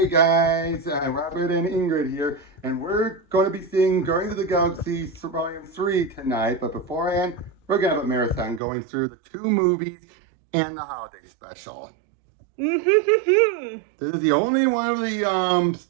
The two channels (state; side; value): drops out; left; at 8.6 s